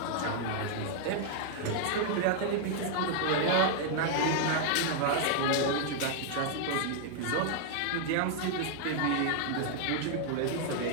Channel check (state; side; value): different; both; correlation 0.00